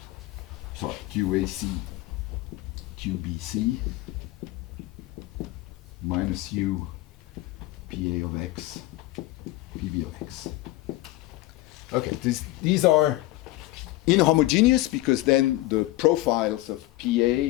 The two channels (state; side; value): quieter; right; 18.1 dB